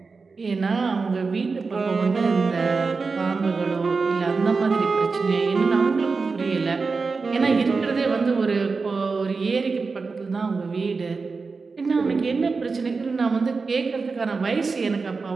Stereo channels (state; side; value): quieter; left; 4.4 dB